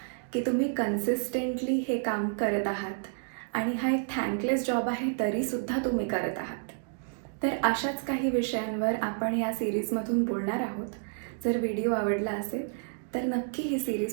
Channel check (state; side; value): silent; left; digital silence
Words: की तुम्ही कन्सिस्टंटली हे काम करत आहात आणि हा एक थँकलेस जॉब आहे तरीसुद्धा तुम्ही करत आहात. तर अशाच काही विषयांवर आपण या सिरीजमधून बोलणार आहोत. जर व्हिडिओ आवडला असेल तर नक्की ही